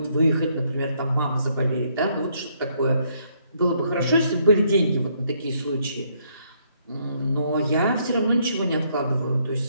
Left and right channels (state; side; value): inverted; both; correlation -0.70